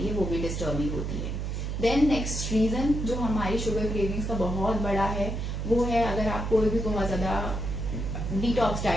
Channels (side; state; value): right; noise; hum, 3 dB below the sound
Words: है, वो भी डिस्टर्बिंग होती है। देन नेक्स्ट रीजन जो हमारी शुगर क्रेविंग्स का बहुत बड़ा है, वो है अगर आप कोई भी बहुत ज्यादा डिटॉक्स